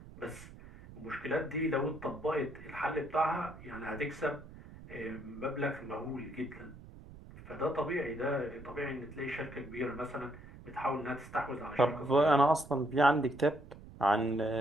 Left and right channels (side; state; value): right; noise; rumble, 17 dB below the sound